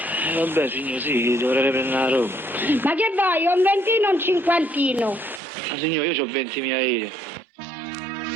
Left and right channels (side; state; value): left; drops out; at 5.4 s